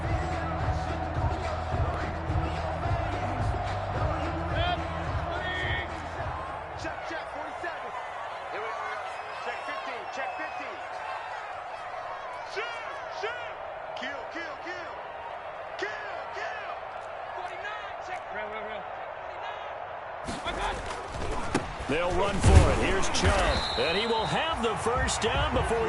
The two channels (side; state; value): both; identical; correlation 1.00